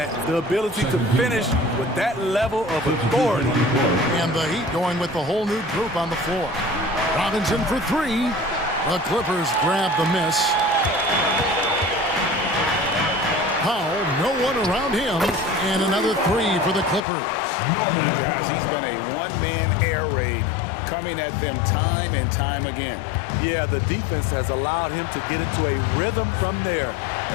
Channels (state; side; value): drops out; right; at 17.0 s